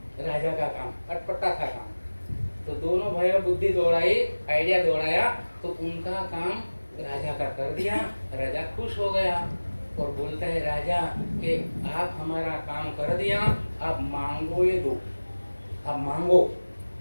राजा का काम अटपटा था काम, तो दोनों भाइयों बुद्धि दौड़ाई, आइडिया दौड़ाया, तो उनका काम राजा का कर दिया। राजा खुश हो गया और बोलता है राजा कि आप हमारा काम कर दिया, आप मांगो ये दो, आप मांगो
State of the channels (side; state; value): both; inverted; correlation -1.00